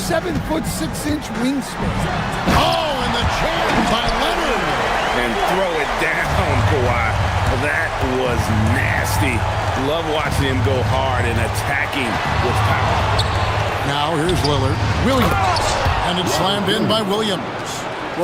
wingspan. Oh, and the jam by Leonard. And throw it down, Kawhi. That was nasty. Love watching him go hard and attacking with power. Now here's Lillard. Williams. And it's slammed in by Williams.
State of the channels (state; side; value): identical; both; correlation 1.00